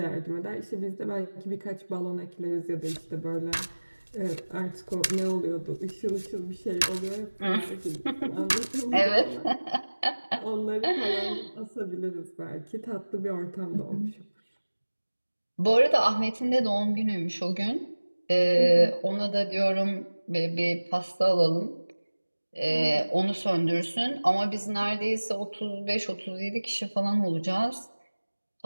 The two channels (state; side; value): inverted; both; correlation -1.00